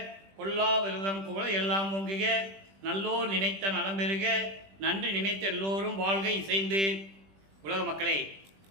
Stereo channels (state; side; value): late; left; 20 ms